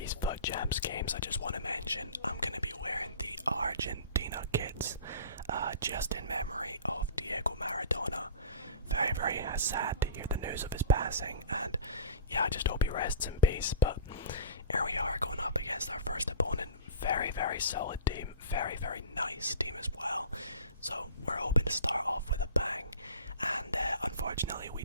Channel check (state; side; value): inverted; both; correlation -0.36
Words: FUT Champs games, I just want to mention I'm going to be wearing the Argentina kits, just in memory of Diego Maradona. Very, very sad to hear the news of his passing, and yeah, I just hope he rests in peace. But here we are going up against our first opponent. Very, very solid team, very, very nice team as well. So we're hoping to start off with a bang, and unfortunately we